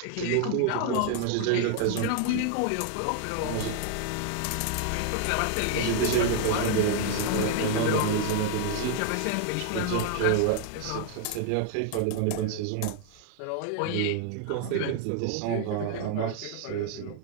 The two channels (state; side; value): different; both; correlation 0.00